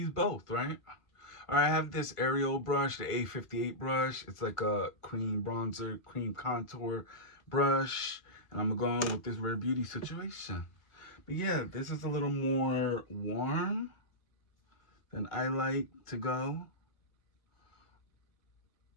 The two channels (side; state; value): right; late; 1.5 ms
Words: both, right? All right, I have this Ariel brush, the A58 brush. It's like a cream bronzer, cream contour brush. And I'm going with this Rare Beauty situation. But yeah, this is a little more warm than I like to go.